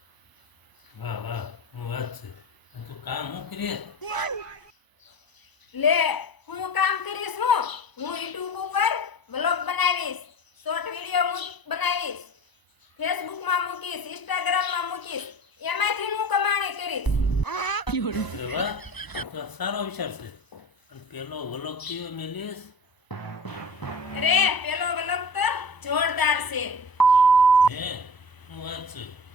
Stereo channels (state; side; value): late; right; 1.0 ms